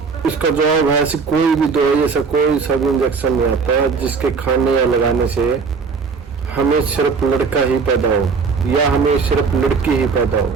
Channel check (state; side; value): quieter; left; 5.1 dB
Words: इसका जवाब है, ऐसी कोई भी दवाई, ऐसा कोई सा भी इंजेक्शन नहीं आता जिसके खाने या लगाने से हमें सिर्फ लड़का ही पैदा हो या हमें सिर्फ लड़की ही पैदा हो।